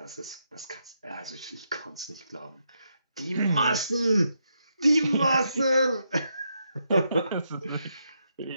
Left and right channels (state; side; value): inverted; both; correlation -0.81